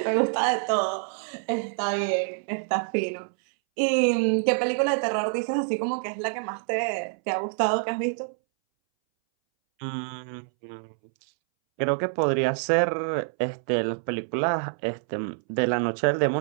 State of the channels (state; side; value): silent; left; 61 dB below the other